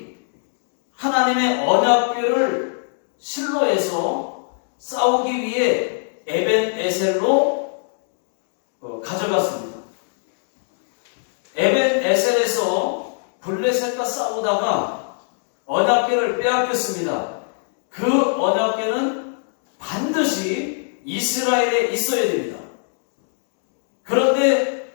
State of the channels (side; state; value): right; silent; digital silence